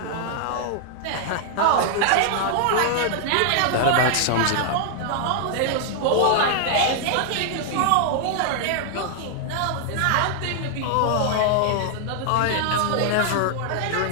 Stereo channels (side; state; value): both; different; correlation 0.00